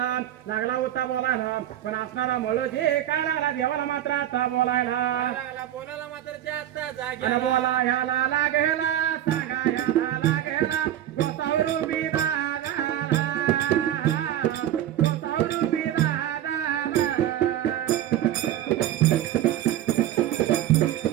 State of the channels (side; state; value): left; quieter; 12.0 dB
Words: लागला होता बोलायला पण असणारा मळोजी काय लागला देवाला मात्र आता बोलायला लागला बोलायला मात्र त्या आता अरे जाग्याला बोला ह्याला लागेला सांगा ह्याला लागेला गोसावरू बिरागाला गोसावरू बिरागाला